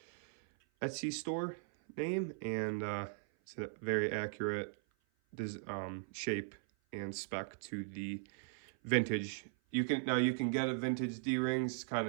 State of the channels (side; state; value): left; silent; 52 dB below the other